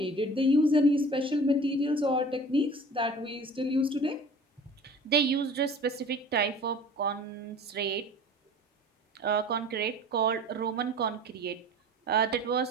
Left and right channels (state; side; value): normal; both; correlation 0.43